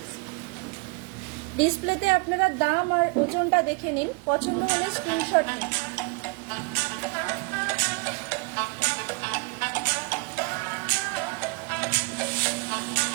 ডিসপ্লেতে আপনারা দাম আর ওজনটা দেখে নিন, পছন্দ হলে স্ক্রিনশট নিন।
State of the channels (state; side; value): quieter; left; 28.8 dB